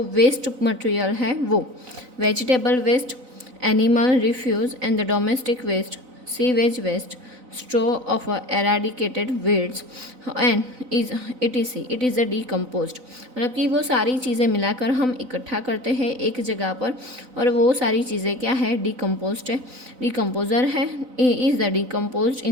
वेस्ट मटेरियल है वो vegetable waste, animal refuse and the domestic waste, sewage waste, straw of eradicated weeds and it is a decomposed। मतलब कि वो सारी चीज़ें मिलाकर हम इकट्ठा करते हैं एक जगह पर और वो सारी चीज़ें क्या है? डिकम्पोज्ड है, डिकम्पोजर है। Is the decomposed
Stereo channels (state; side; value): late; left; 4.0 ms